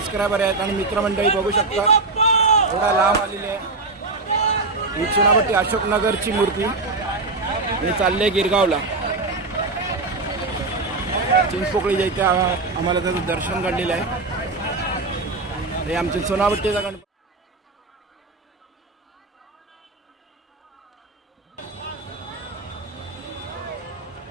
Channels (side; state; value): left; quieter; 3.5 dB